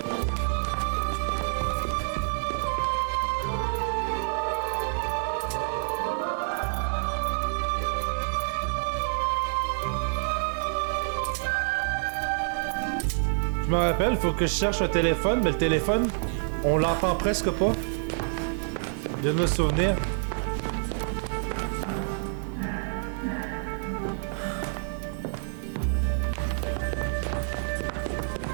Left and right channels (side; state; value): left; silent; digital silence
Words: Je me rappelle, faut que je cherche un téléphone, mais le téléphone, on l'entend presque pas. Je viens de me souvenir.